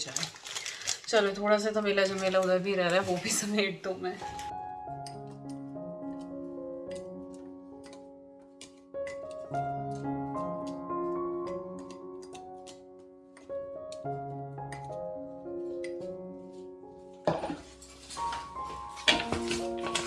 चलो, थोड़ा सा तो मेला जमेला उधर भी रह रहा है, वो भी समेट दूँ मैं।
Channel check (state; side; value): identical; both; correlation 1.00